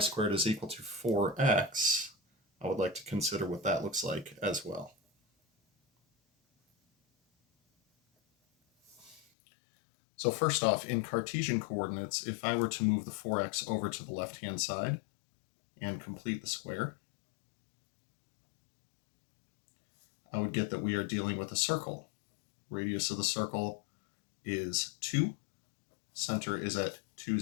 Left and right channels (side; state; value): right; drops out; at 9.2 s